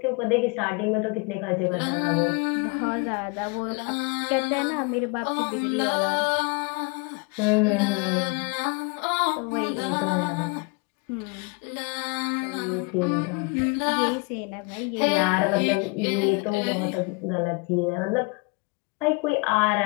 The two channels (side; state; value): right; quieter; 30.6 dB